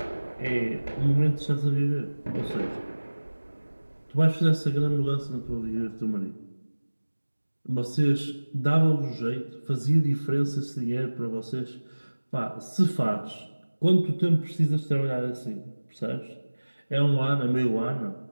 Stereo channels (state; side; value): inverted; both; correlation -1.00